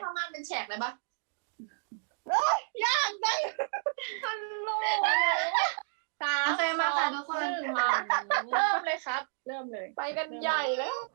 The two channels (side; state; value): left; silent; digital silence